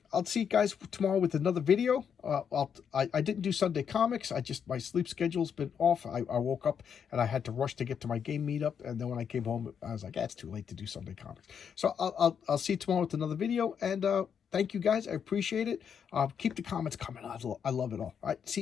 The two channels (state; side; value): quieter; right; 7.5 dB